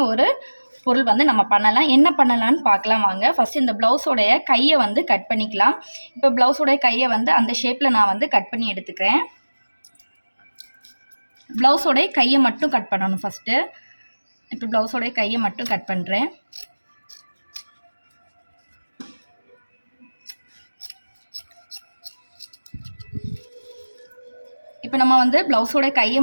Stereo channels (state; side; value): inverted; both; correlation -1.00